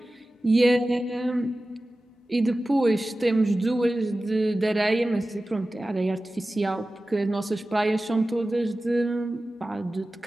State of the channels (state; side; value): normal; both; correlation 0.96